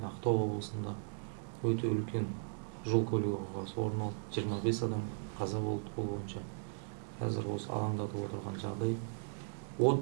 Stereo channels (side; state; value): left; silent; digital silence